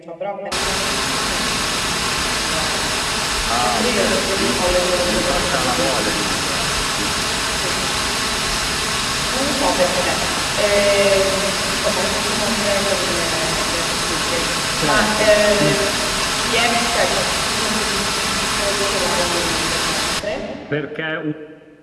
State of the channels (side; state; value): both; identical; correlation 1.00